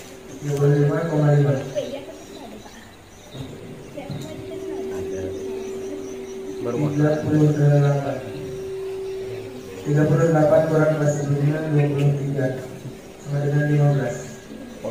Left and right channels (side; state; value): both; identical; correlation 1.00